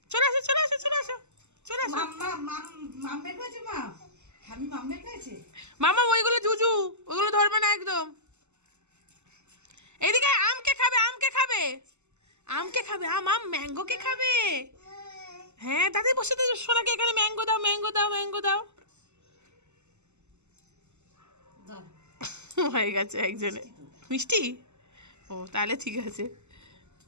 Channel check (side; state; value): left; late; 0.83 ms